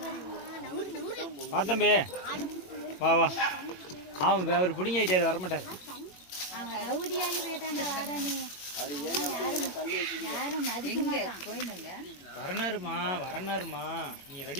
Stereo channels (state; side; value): late; right; 22 ms